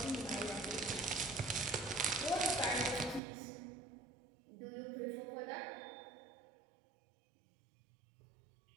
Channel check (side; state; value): left; drops out; at 3.2 s